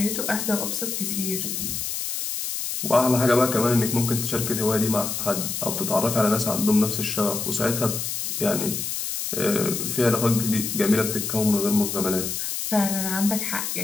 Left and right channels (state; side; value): noise; left; hiss, 3 dB below the sound